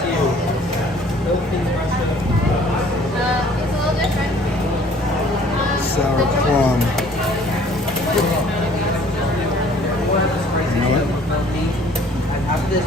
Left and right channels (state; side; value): normal; both; correlation 0.55